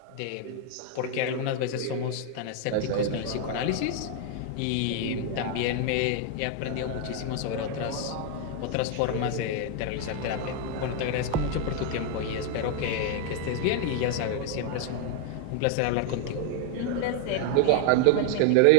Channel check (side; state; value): both; different; correlation 0.00